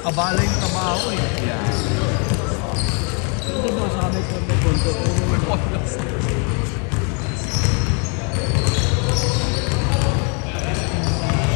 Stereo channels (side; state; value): right; quieter; 36.6 dB